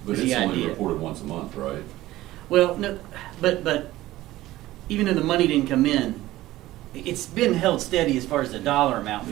But is it's the only idea. reported once a month, right? Well, no, but even though the money didn't come in, it's been held steady as far as the dollar amount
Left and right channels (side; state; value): left; quieter; 16.3 dB